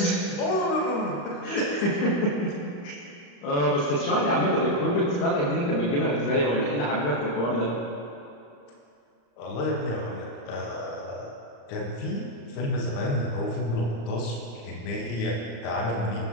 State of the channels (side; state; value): right; late; 35 ms